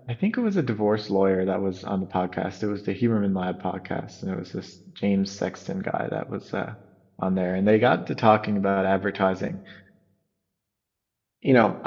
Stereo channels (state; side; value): identical; both; correlation 1.00